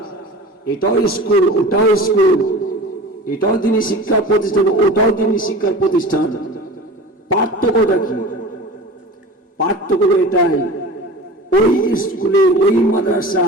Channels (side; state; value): both; normal; correlation 0.36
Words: এটাও স্কুল, ওটাও স্কুল, এটাও দ্বীনি শিক্ষা প্রতিষ্ঠান, ওটাও দ্বীনি শিক্ষার প্রতিষ্ঠান। পার্থক্যটা কি? পার্থক্য এটাই, ওই স্কুলে, ওই